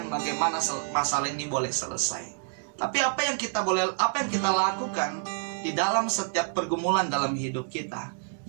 bagaimana masalah ini boleh selesai. Tapi apa yang kita lakukan di dalam setiap pergumulan dalam hidup kita,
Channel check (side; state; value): left; silent; digital silence